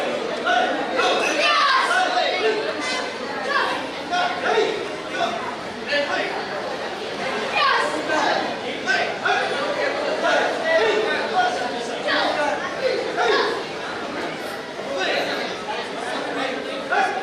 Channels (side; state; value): both; identical; correlation 1.00